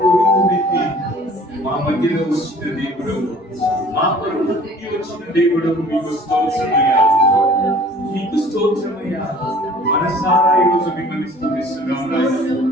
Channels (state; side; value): normal; both; correlation 0.50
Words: రూపుమెత్తి మా మధ్యలో వచ్చిన దేవుడు, మా కొరకు పుట్టి వచ్చిన దేవుడు, మీకు స్తోత్రమయ్యా, మీకు స్తోత్రమయ్యా. మనసారా ఈరోజు మిమ్మల్ని స్తుతిస్తున్నాం నాయన,